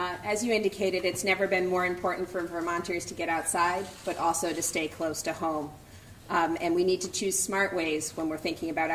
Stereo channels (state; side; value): identical; both; correlation 1.00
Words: As you indicated, it's never been more important for Vermonters to get outside, but also to stay close to home. And we need to choose smart ways when we're thinking about